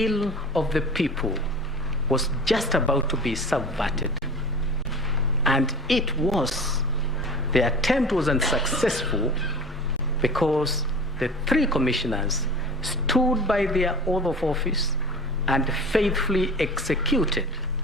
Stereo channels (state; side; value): normal; both; correlation 0.37